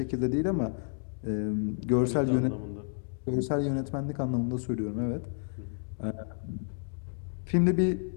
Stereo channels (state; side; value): silent; right; digital silence